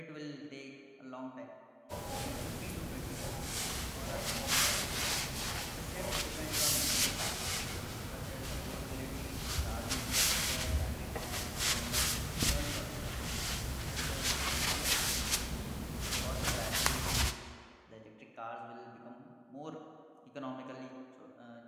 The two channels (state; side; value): identical; both; correlation 1.00